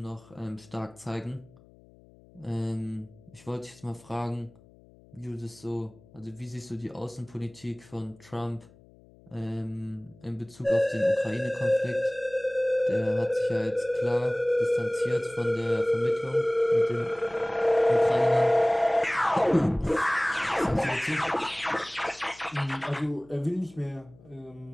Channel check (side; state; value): left; noise; hum, 25 dB below the sound